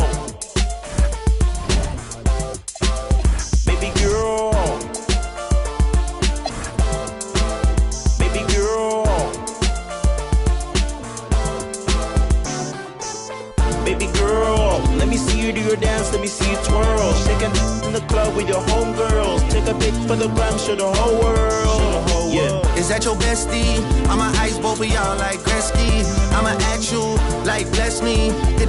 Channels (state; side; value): identical; both; correlation 1.00